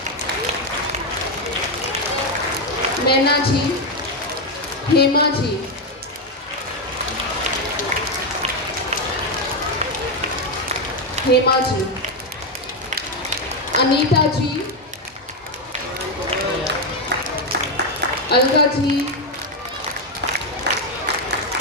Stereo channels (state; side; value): normal; both; correlation 0.06